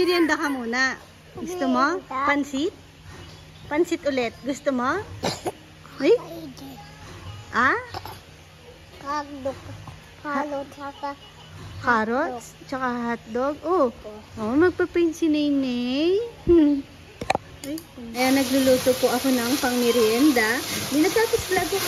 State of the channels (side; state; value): both; identical; correlation 1.00